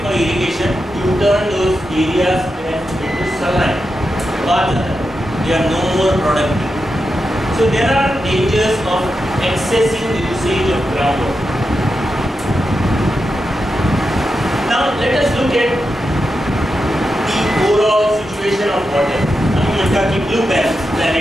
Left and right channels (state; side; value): normal; both; correlation 0.88